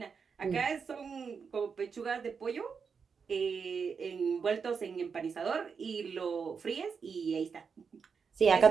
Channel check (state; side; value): quieter; left; 5.9 dB